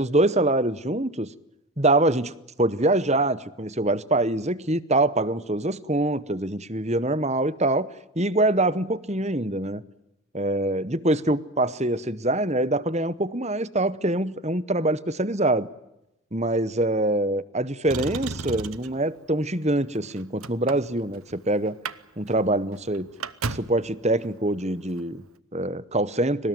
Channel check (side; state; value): both; normal; correlation 0.33